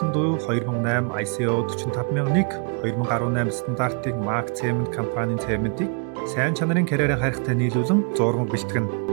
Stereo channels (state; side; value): quieter; left; 38.7 dB